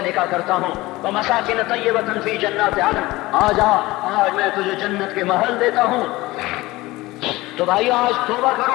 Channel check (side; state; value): right; quieter; 19.6 dB